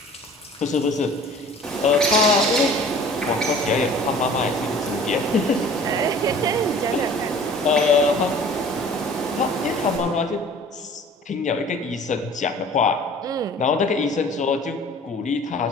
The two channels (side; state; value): both; normal; correlation 0.47